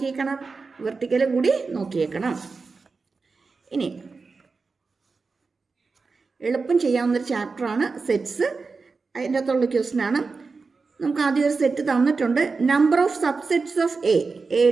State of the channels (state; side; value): quieter; left; 4.4 dB